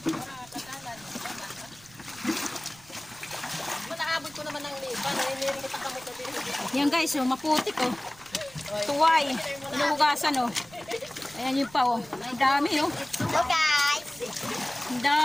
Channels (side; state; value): right; noise; rumble, 24 dB below the sound